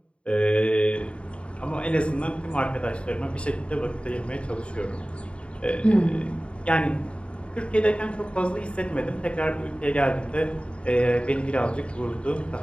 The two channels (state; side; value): late; right; 0.058 ms